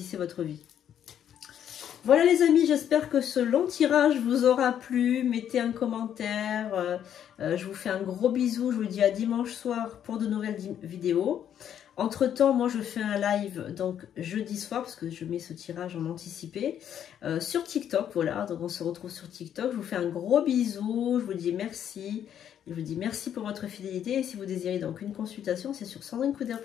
votre vie. Voilà les amis, j'espère que ce long tirage vous aura plu. Mettez un commentaire. Je vous fais un gros bisou. Je vous dis à dimanche soir pour de nouvelles vidéos. Entre temps, moi je fais un live donc jeudi soir parce que je mets ce tirage en anticipé sur TikTok. Voilà, donc on se retrouve sur TikTok. Je vous fais un gros bisou. Je vous dis merci. Je vous dis merci pour votre fidélité. Et si vous désirez donc une consultation, c'est sur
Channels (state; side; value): quieter; right; 9.7 dB